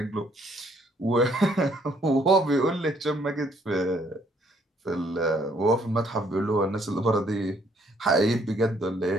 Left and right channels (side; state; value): both; normal; correlation 0.66